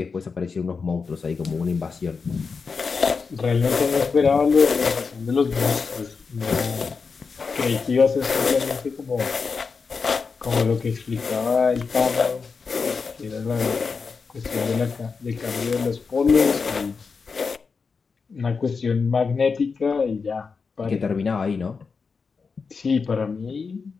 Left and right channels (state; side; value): quieter; right; 5.0 dB